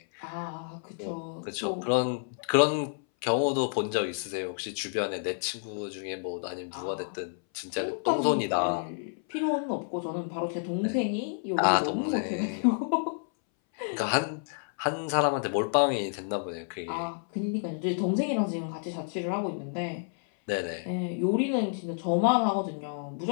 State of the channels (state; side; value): silent; right; 58 dB below the other